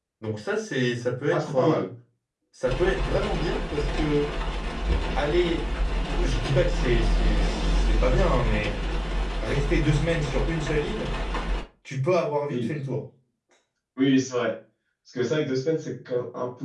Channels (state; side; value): identical; both; correlation 1.00